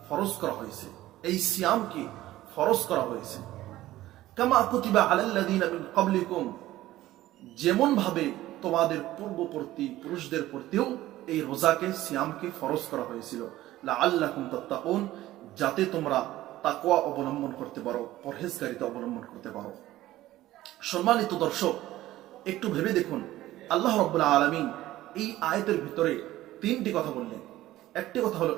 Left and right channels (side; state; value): left; quieter; 15.4 dB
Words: ফরজ করা হয়েছে, এই সিয়ামকে ফরজ করা হয়েছে। কামা কুতিবা আলাল্লাযীনা মিন ক্বাবলিকুম, যেমন ভাবে তোমাদের পূর্ববর্তী পুরুষদের প্রতিও এই রোজাকে সিয়ামকে ফরজ করা হয়েছিল, লাআল্লাকুম তাত্তাকুন, যাতে তোমরা তাকওয়া অবলম্বন করতে পারো, পরহেজগারিতা অবলম্বন করতে পারো। সম্মানিত দর্শক, একটু ভেবে দেখুন, আল্লাহ রাব্বুল আলামিন এই আয়াতের ভিতরে তিনটি কথা বললেন। একটি কথা হলো